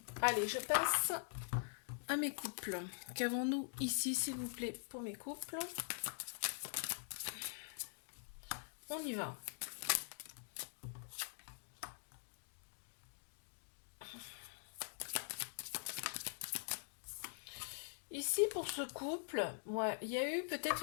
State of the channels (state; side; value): silent; right; digital silence